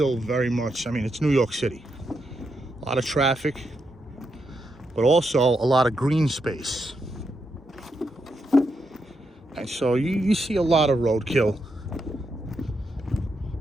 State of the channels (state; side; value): normal; both; correlation 0.83